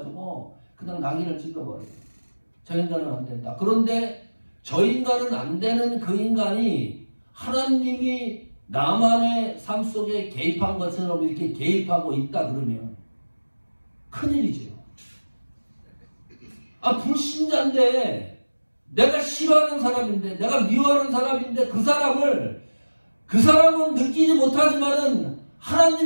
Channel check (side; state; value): both; inverted; correlation -1.00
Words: 그냥 낙인을 찍어버려요. 저 인간은 안 된다. 그런데 저 인간은 안 되는 그 인간이 하나님이 나만의 삶 속에 개입한 것처럼 이렇게 개입하고 있다 그러면 큰일이죠. 불신자인데 내가 싫어하는 사람인데 내가 미워하는 사람인데 그 사람은 느끼지 못하지만은